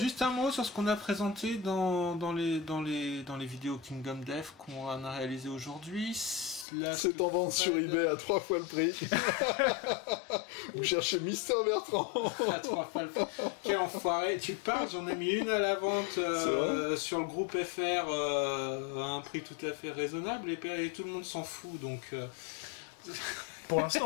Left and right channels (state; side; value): drops out; right; at 6.7 s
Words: un mot sur ce qu'on a présenté dans les vidéos Kingdom Death qu'on a réalisé aujourd'hui. C'est en vente sur eBay à 3 fois le prix. Vous cherchez Mister Bertrand. À 3 fois le prix. Quel enfoiré. Tu parles, j'en ai mis une à la vente sur le groupe FR à un prix tout à fait raisonnable et tout le monde s'en fout. Donc... Pour